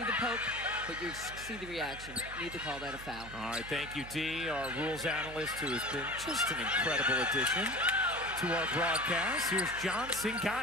the poke, but you see the reaction. You need to call that a foul. All right, thank you, Dee, our rules analyst, who has been just an incredible addition to our broadcast. Here's Johnson,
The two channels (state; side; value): noise; right; hum, 14 dB below the sound